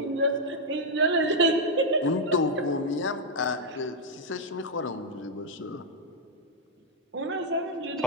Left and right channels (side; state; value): both; normal; correlation 0.00